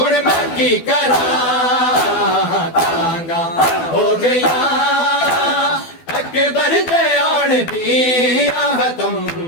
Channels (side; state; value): right; late; 12 ms